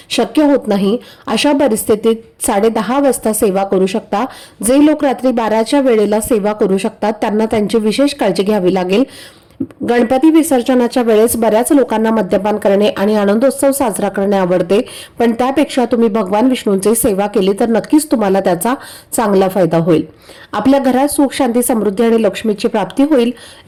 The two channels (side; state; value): both; identical; correlation 1.00